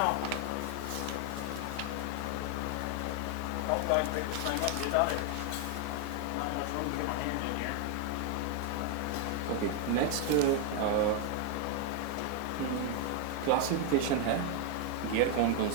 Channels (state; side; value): different; both; correlation 0.01